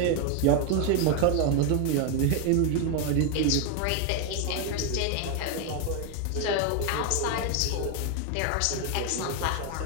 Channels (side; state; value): both; different; correlation 0.01